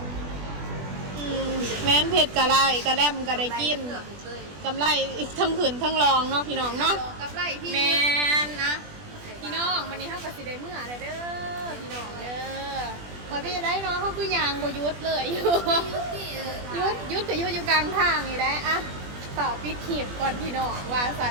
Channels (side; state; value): left; late; 20 ms